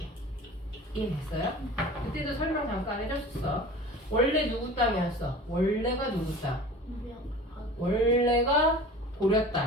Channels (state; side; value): normal; both; correlation 0.40